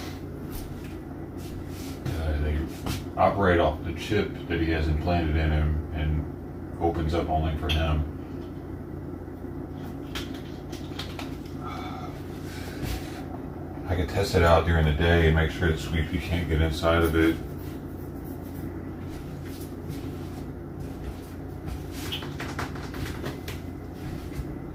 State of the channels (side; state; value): both; identical; correlation 1.00